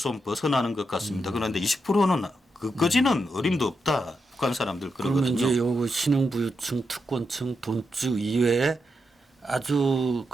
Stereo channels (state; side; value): normal; both; correlation 0.85